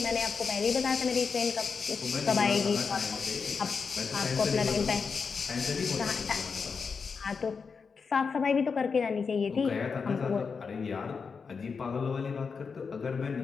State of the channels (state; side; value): quieter; right; 5.4 dB